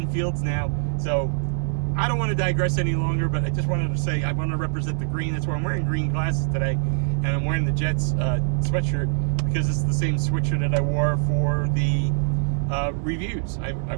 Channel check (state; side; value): silent; left; 56 dB below the other